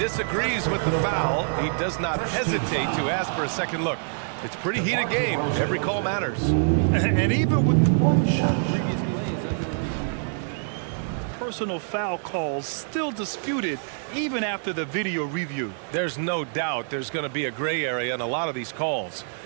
with the foul. He does not hesitate to ask for a second look. It's a pretty heated game. Every call matters. And even with previous players under review, personal foul calls still disputed even after the video review. There's no doubt there's going to be a gray area in a lot of these calls.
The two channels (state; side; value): silent; left; digital silence